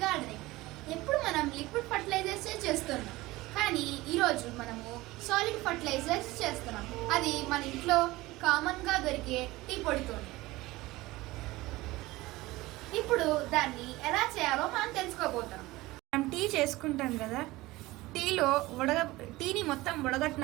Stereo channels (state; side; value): quieter; left; 19.4 dB